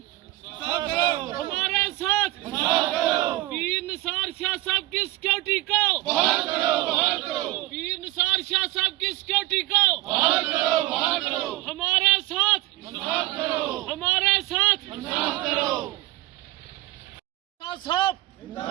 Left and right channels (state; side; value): quieter; left; 18.2 dB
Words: हमारे साथ पीर निसार शाह साहब की सिक्योरिटी को बहाल करो। पीर निसार शाह साहब की सिक्योरिटी को बहाल करो। हमारे साथ हमारे साथ साहब